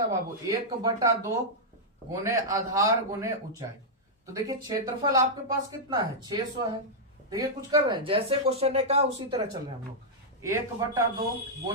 है बाबू? 1/2 गुने आधार गुने ऊंचाई। तो देखिए क्षेत्रफल आपके पास कितना है? 600 है। देखिए कुछ कर रहे हैं, जैसे क्वेश्चन ने कहा उसी तरह चल रहे हैं हम लोग। 1/2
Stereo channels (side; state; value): both; normal; correlation -0.07